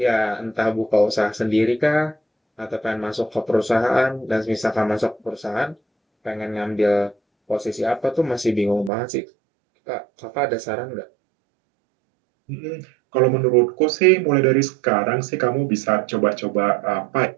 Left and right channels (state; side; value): drops out; left; at 8.9 s